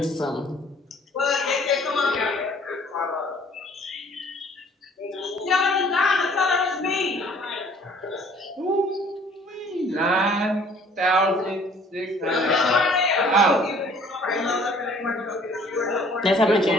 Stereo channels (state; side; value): normal; both; correlation 0.55